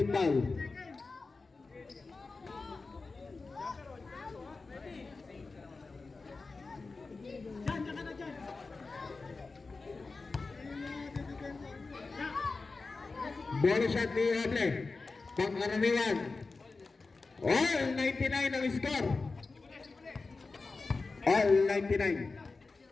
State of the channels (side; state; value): right; quieter; 3.9 dB